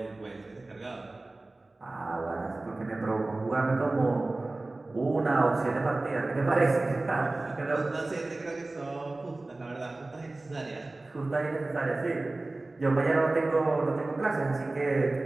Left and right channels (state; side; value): quieter; left; 3.0 dB